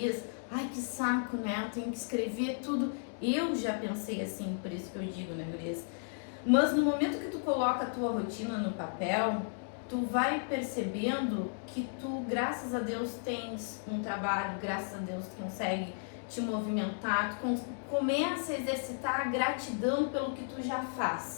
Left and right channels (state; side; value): silent; right; digital silence